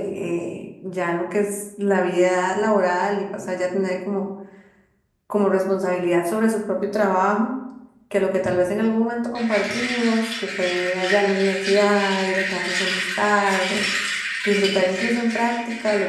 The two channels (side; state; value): both; identical; correlation 1.00